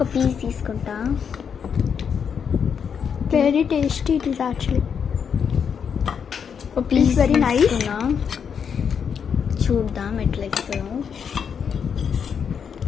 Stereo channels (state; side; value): quieter; right; 7.1 dB